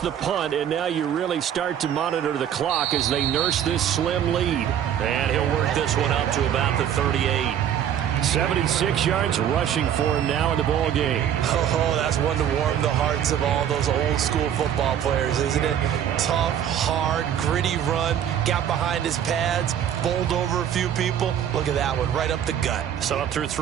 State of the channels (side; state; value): left; quieter; 9.7 dB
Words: the punt, and now you really start to monitor the clock as they nurse this slim lead. And he'll work this one up to about the 38. 76 yards rushing for him now in the ball game. Oh, that's one to warm the hearts of all those old school football players, isn't it? Tough, hard, gritty run, got behind his pads, bowled over a few people. Look at that one, right up the gut. So up through